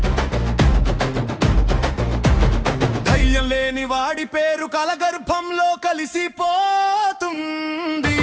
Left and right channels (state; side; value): identical; both; correlation 1.00